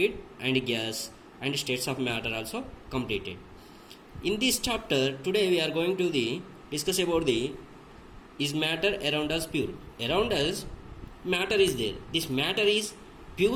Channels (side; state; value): both; identical; correlation 1.00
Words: and gas, and states of matter also completed. In this chapter today we are going to discuss about the is matter around us pure? Around us matter is there. This matter is